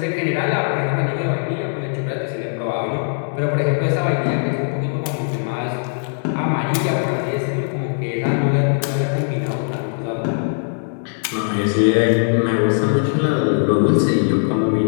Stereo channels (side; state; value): right; silent; 66 dB below the other